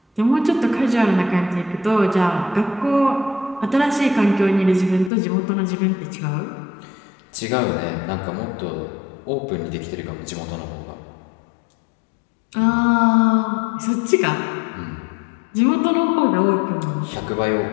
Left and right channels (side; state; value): right; drops out; at 5.1 s